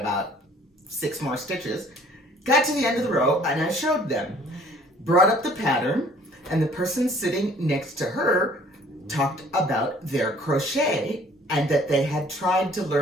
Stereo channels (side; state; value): both; normal; correlation 0.56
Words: 6 more stitches. Got to the end of the row, and I showed them. Brought up the pattern, and the person sitting next to her talked about their crochet, and that they had tried to